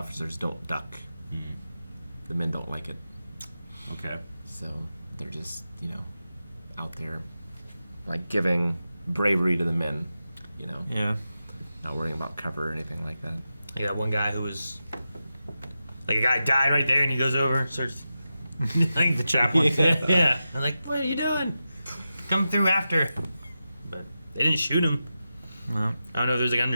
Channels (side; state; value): both; inverted; correlation -0.91